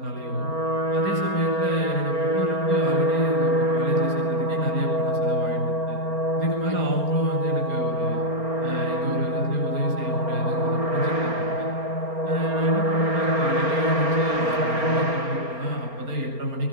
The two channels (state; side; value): late; left; 4.3 ms